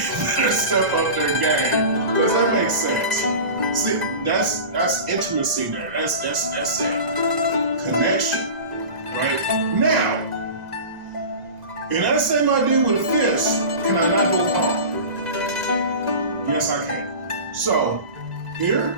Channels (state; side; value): late; left; 2.0 ms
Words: better step up their game. Does that make sense? See, that's intimacy there. That's it. Connection. Right? Now, in that same idea with a fist, can I not go palm? Yes, I can. So, here,